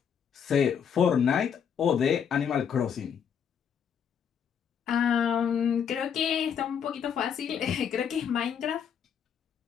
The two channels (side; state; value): right; quieter; 7.7 dB